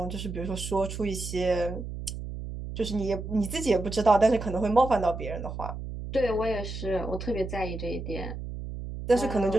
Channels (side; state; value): right; noise; hum, 8 dB below the sound